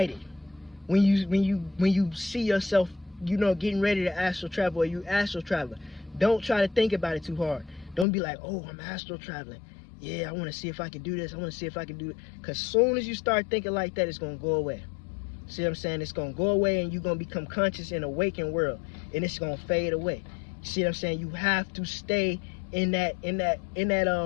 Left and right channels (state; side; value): drops out; right; at 8.1 s